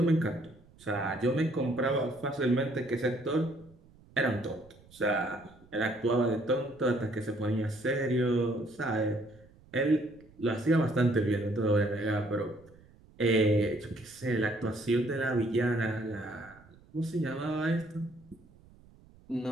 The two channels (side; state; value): right; noise; rumble, 26 dB below the sound